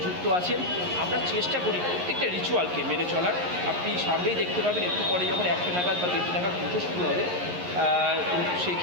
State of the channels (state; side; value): late; left; 11 ms